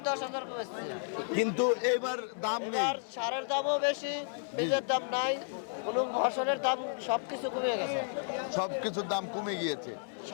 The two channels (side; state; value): right; silent; 56 dB below the other